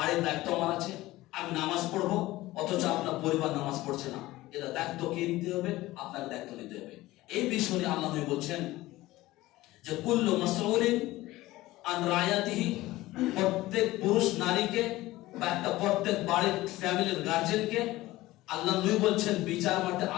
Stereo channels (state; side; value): quieter; right; 17.7 dB